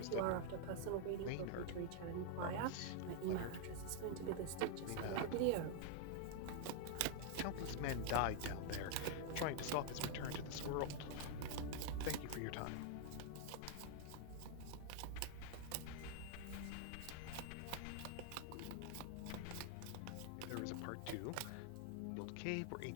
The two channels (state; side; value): different; both; correlation 0.00